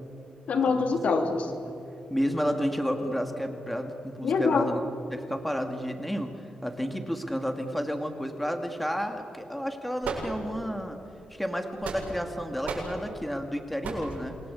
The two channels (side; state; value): both; normal; correlation 0.89